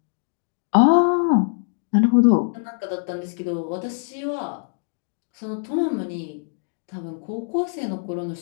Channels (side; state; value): right; silent; digital silence